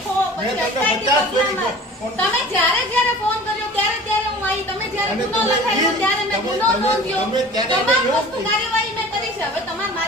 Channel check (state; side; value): normal; both; correlation 0.42